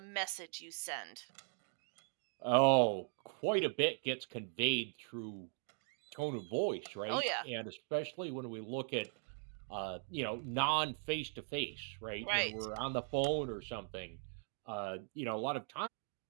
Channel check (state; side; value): silent; left; 51 dB below the other